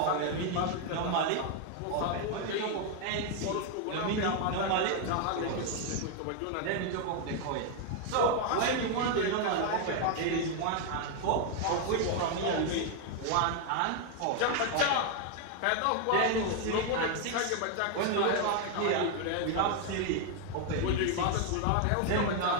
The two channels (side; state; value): both; different; correlation 0.01